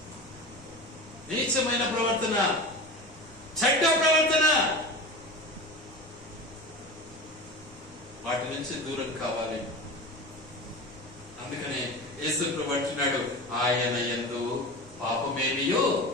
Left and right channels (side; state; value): right; noise; rumble, 22 dB below the sound